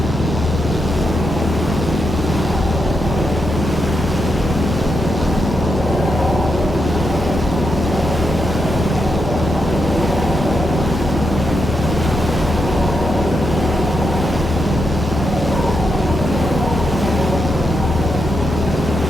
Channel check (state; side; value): normal; both; correlation 0.83